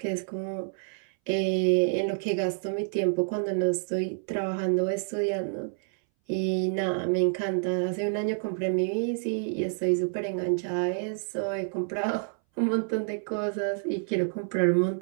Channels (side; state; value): left; silent; 59 dB below the other